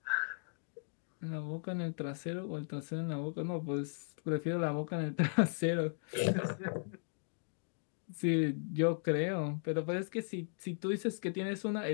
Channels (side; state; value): right; silent; digital silence